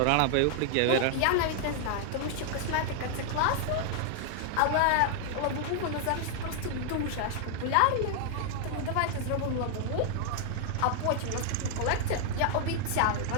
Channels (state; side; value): different; both; correlation 0.00